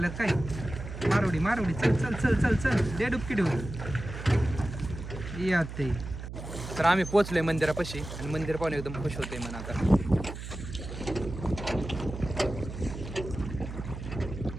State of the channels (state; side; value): noise; right; hum, 9 dB below the sound